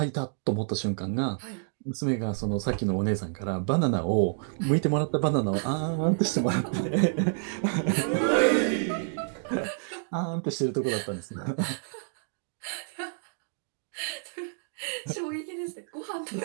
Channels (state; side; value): silent; left; digital silence